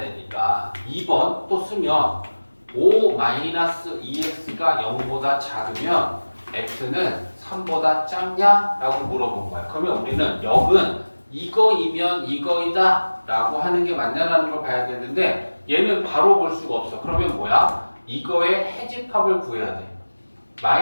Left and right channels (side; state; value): both; inverted; correlation -1.00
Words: 되니까 2번 또 쓰면 5-2x가 0보다 작으면 x는 3보다 작냐? 라고 물어본 거야. 그러면 우리는 역은 이거이면 이거이다 라고 하는 게 맞냐라는 걸 봐야겠는데 얘는 바로 볼 수가 없어. 그러면 뭐야? 이거의 해집합을 구해야 돼.